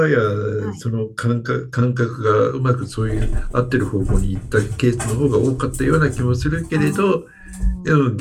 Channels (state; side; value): identical; both; correlation 1.00